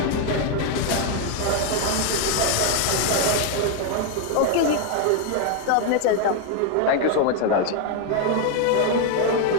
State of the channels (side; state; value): both; different; correlation 0.00